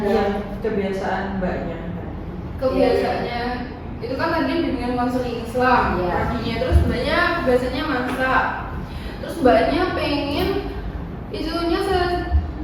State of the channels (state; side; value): identical; both; correlation 1.00